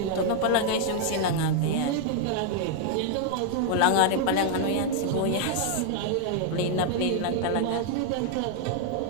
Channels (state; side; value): different; both; correlation 0.00